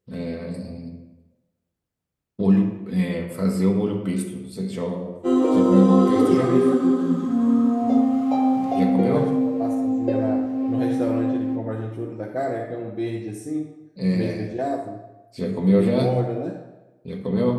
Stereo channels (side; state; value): both; identical; correlation 1.00